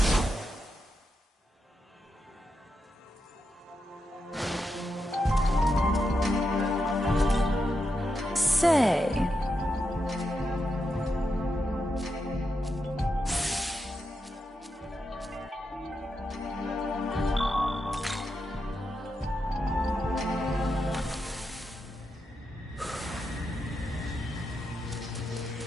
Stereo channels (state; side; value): normal; both; correlation 0.85